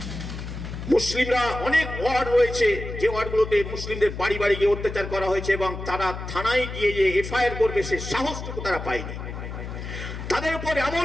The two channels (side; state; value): left; noise; hum, 8 dB below the sound